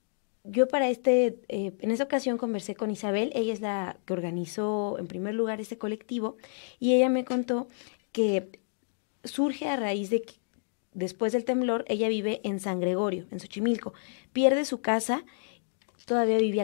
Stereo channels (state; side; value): silent; right; digital silence